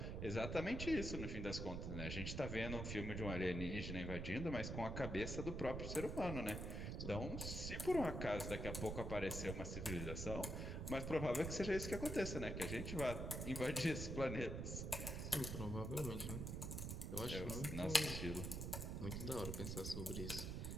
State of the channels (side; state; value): right; noise; rumble, 3 dB below the sound